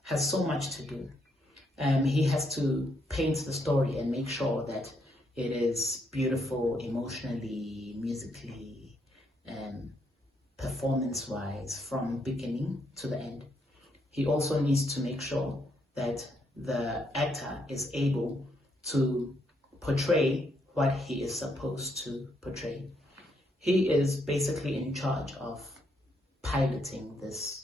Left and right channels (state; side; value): normal; both; correlation 0.75